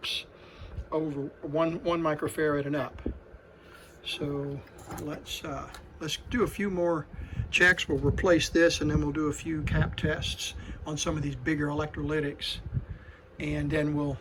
over one microfarad and up. So let's do a few more checks. We'll replace this, and then we'll do a few cap tests on some of these bigger electrolytics, and then we'll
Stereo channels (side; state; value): both; identical; correlation 1.00